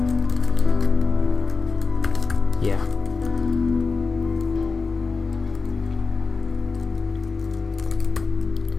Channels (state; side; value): quieter; right; 4.3 dB